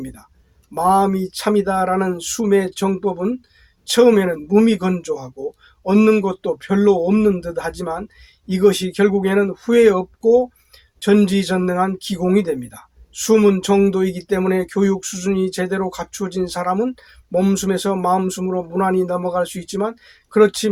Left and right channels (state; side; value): identical; both; correlation 1.00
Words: 마음이 참이다라는 숨의 정법은 처음에는 무미건조하고 얻는 것도 별로 없는 듯 하지만 이것이 결국에는 후회 없고 전지전능한 기공이 됩니다. 숨은 정도이기 때문에 교육 수준이 제대로 갖추어진 사람은 몸숨에서 마음숨으로 무난히 넘어갈 수 있지만 그렇지